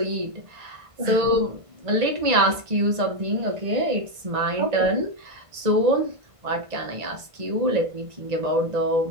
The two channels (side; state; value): left; late; 1.5 ms